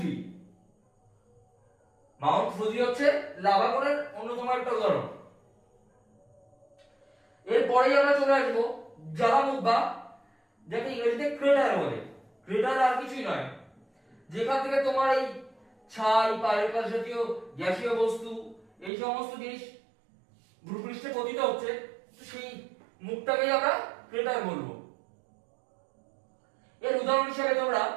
ফুজি হচ্ছে লাভা কোনের অন্যতম একটা উদাহরণ। এরপরেই আমরা চলে আসবো জ্বালামুখ বা যাকে ইংরেজিতে ক্রেটার বলে। ক্রেটার আর কিছুই নয়, যেখান থেকে তোমার এই ছাই, পাইরেট জাতীয় গ্যাসীয় বস্তু এই সমস্ত জিনিস ভূপৃষ্ঠে পতিত হচ্ছে, তো সেই মুখটাকেই আমরা ক্রেটার বলবো। এর উদাহরণ হিসেবে তোমরা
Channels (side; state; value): left; drops out; at 18.9 s